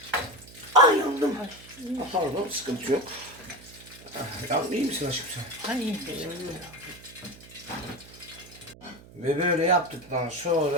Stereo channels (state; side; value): noise; right; hum, 20 dB below the sound